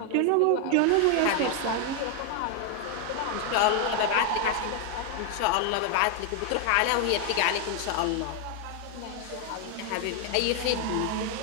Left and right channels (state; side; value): different; both; correlation 0.01